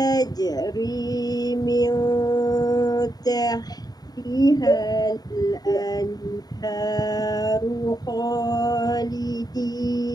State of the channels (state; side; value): late; right; 0.19 ms